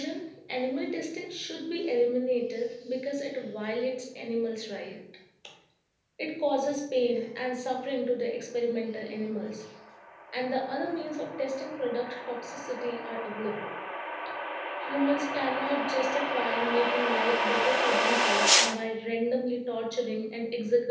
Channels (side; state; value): both; identical; correlation 1.00